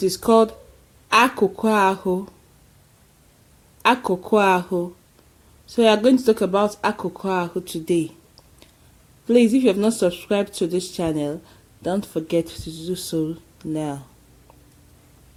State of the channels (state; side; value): identical; both; correlation 1.00